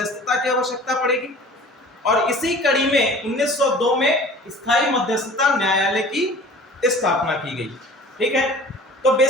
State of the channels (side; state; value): both; normal; correlation 0.44